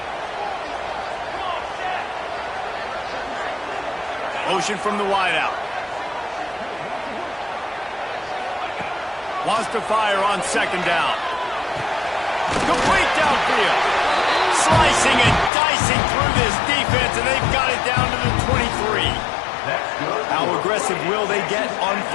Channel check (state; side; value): drops out; right; at 15.5 s